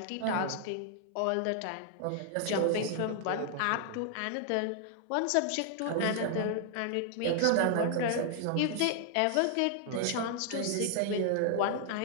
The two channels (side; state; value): both; different; correlation 0.00